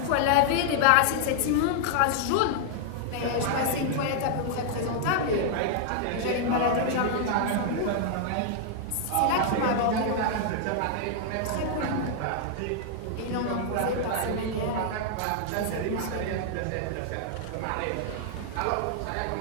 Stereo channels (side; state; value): both; different; correlation -0.01